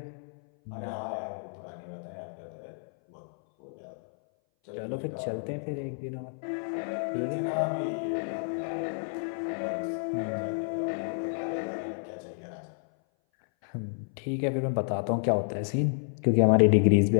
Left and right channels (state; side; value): silent; right; 58 dB below the other